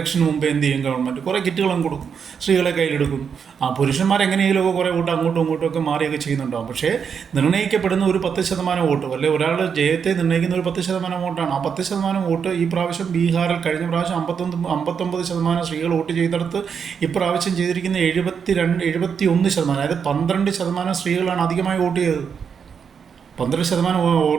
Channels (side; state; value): left; quieter; 6.8 dB